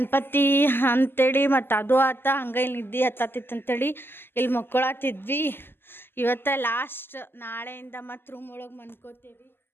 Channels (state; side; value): late; right; 0.10 ms